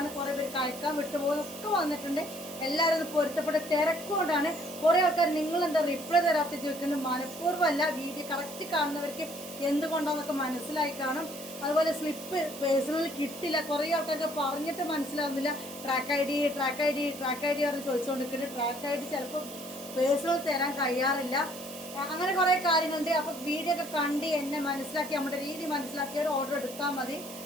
കുറേ പേര് കഴിക്കാൻ വിട്ടുപോകുന്നൊക്കെ വന്നിട്ടുണ്ട്. എല്ലാവരും ഇത് പൊരുത്തപ്പെട്ട തിരക്കുകൊണ്ടാണ്. കുറേ ആൾക്കാർ നിങ്ങളെന്താ റിപ്ലൈ തരാത്ത ചോദിക്കുന്നത്. മനഃപൂർവ്വമല്ല, വീഡിയോ കറക്റ്റ് കാണുന്നവർക്ക് എന്തുകൊണ്ടാണെന്നൊക്കെ മനസ്സിലായി കാണും. അതുപോലെ സ്ലിപ്പ് പേഴ്സണൽ കിട്ടില്ല, കുറേ ആൾക്കാർക്ക് പറഞ്ഞിട്ട് മനസ്സിലാവുന്നില്ല. ട്രാക്ക് ഐ ഡി പറഞ്ഞ് ചോദിച്ചുകൊണ്ടിരിക്കുന്നത്. ട്രാക്ക് ഐ ഡി ചിലപ്പോൾ പേഴ്സണൽ തരാൻ കഴിയാറില്ല. അങ്ങനെ കുറേ കാര്യങ്ങളുണ്ട്. അപ്പോൾ വീഡിയോ ഒക്കെ കണ്ട് എന്നെ മനസ്സിലാക്കി, നമ്മുടെ രീതി മനസ്സിലാക്കിയവർ ഓർഡർ എടുത്താൽ മതി.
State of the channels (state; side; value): noise; right; hiss, 13 dB below the sound